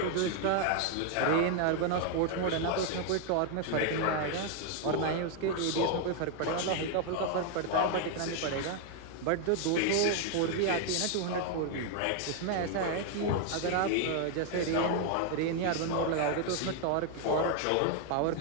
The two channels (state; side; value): different; both; correlation 0.00